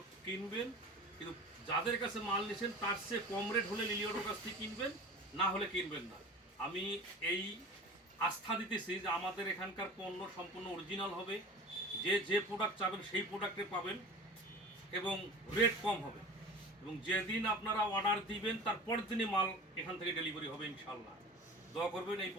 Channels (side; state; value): both; normal; correlation 0.37